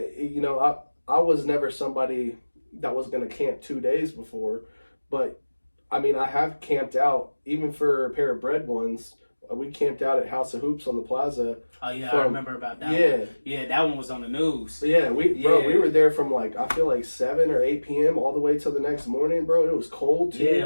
I was never somebody that was going to camp 2 days before, but I mean, I have camped out even for a pair of bread ones. We camped out at House of Hoops on the plaza. Oh yeah, I remember about that one. Yeah, that one was on the news. Yeah, we were there from I feel like 7 or 8 p.m. all the way till the next morning, bro. It was cold too.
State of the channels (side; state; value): both; inverted; correlation -1.00